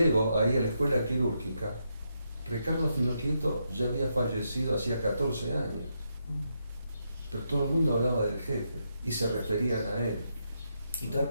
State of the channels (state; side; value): inverted; both; correlation -0.81